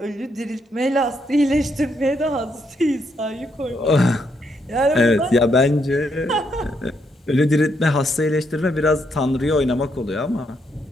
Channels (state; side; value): normal; both; correlation 0.76